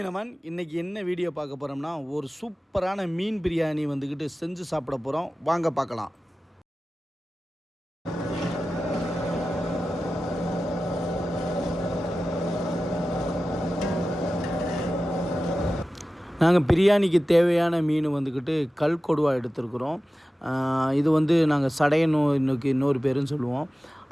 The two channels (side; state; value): both; normal; correlation 0.95